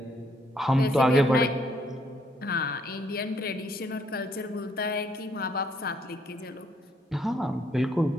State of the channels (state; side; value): normal; both; correlation 0.70